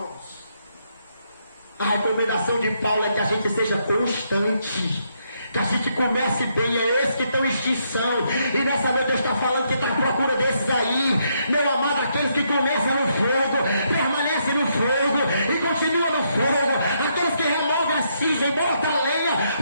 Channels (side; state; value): both; inverted; correlation -0.76